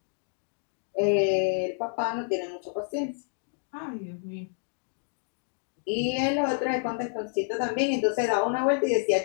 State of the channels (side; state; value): right; silent; 59 dB below the other